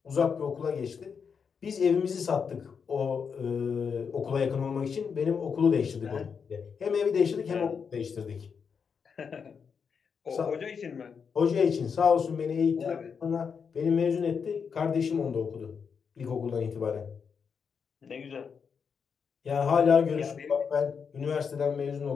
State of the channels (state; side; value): quieter; right; 6.3 dB